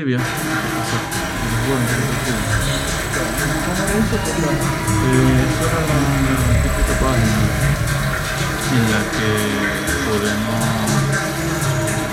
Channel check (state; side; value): identical; both; correlation 1.00